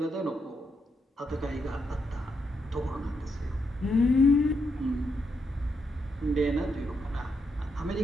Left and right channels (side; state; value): both; normal; correlation 0.80